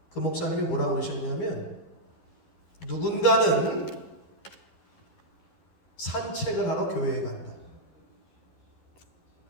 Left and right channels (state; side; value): late; right; 11 ms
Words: 그 목사님이 뭐라고 그러셨냐면 누군가는 산책을 하러 교회에 간다.